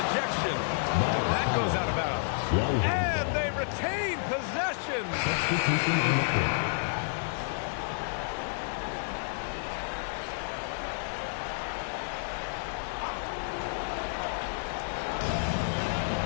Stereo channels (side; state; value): right; silent; digital silence